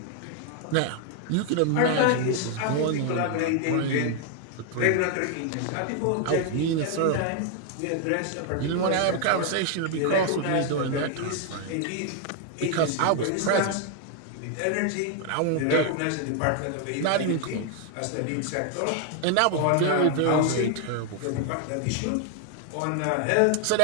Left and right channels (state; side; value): different; both; correlation 0.00